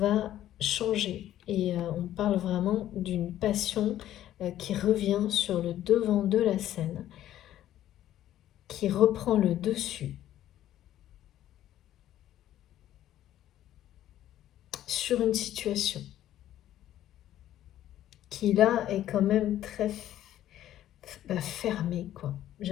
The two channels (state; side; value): quieter; right; 12.5 dB